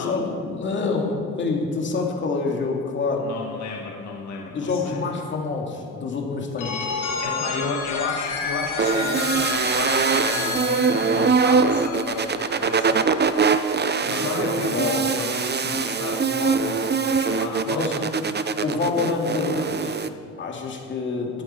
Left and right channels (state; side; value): normal; both; correlation 0.17